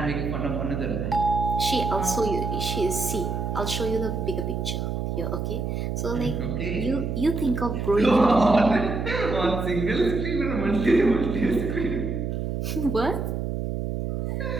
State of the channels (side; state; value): right; noise; hum, 2 dB below the sound